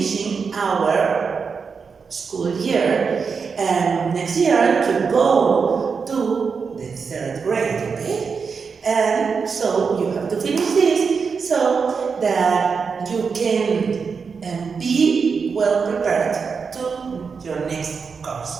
our school year, and next year to go to the 3rd grade, okay? And so you have to finish this so that you can be well prepared to your next course.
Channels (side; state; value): left; quieter; 5.5 dB